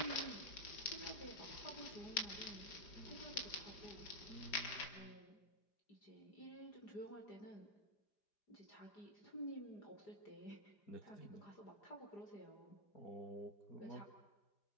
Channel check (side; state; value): right; late; 4.9 ms